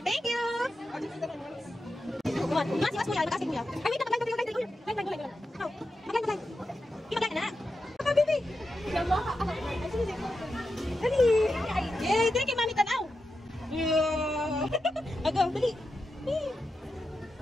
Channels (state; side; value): normal; both; correlation 0.89